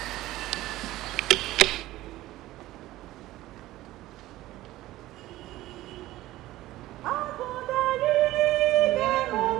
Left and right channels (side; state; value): left; quieter; 16.3 dB